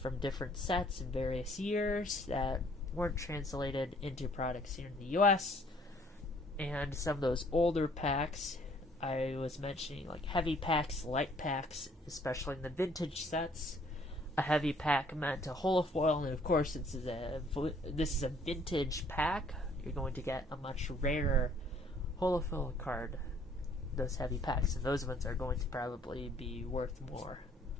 different sets in various years that weren't translated into products here in the US. And some of those older packs, I was mentioning, like heavy packs, light packs, especially in the vintage sets. A heavy pack meant a holofoil, and of course, this is a vintage pack. You're going to get a much rarer holofoil card. Those heavy packs, and those ones are going to probably be worth more.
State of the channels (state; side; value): normal; both; correlation 0.60